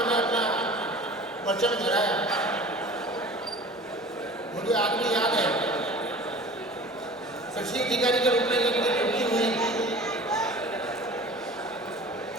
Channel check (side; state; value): both; normal; correlation 0.41